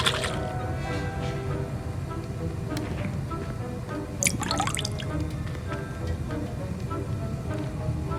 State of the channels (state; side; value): identical; both; correlation 1.00